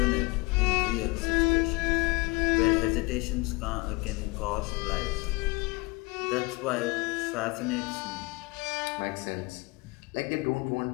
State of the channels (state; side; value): quieter; right; 24.7 dB